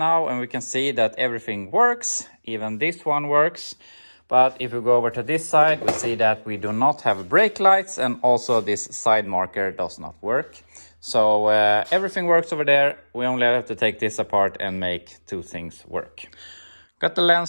and we can see that everything works. Even this one works. But if we go over to this side, we see that we do not have brake lights, and also this side marker does not work. So everything works over there. We only have to take this apart and make two things work. Got the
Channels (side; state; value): both; inverted; correlation -1.00